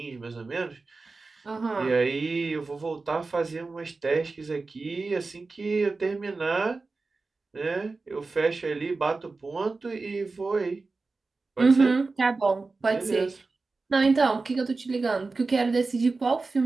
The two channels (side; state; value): left; quieter; 3.8 dB